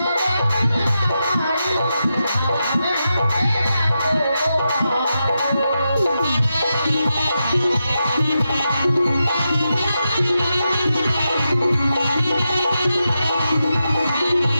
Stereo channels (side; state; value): both; inverted; correlation -0.88